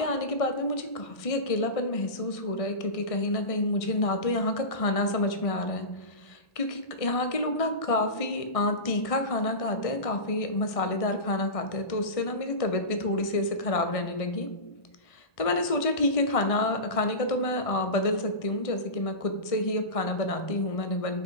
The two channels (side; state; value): right; late; 1.6 ms